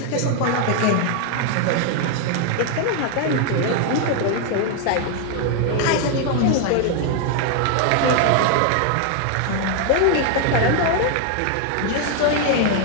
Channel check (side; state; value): both; different; correlation 0.00